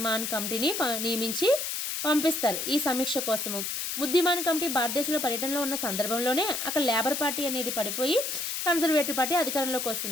కమిటీని నియమించి పంపిస్తారు ఈ సమీక్ష కోసము. ముద్దిమాన్ కమిటీ భారతదేశంలో పర్యటనలో ఉన్న సందర్భంలోనే అక్కడ లేబర్ పార్టీ అనేది పడిపోయి కన్జర్వేటివ్ పార్టీ అధికారంలోకి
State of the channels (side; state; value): left; noise; hiss, 3 dB below the sound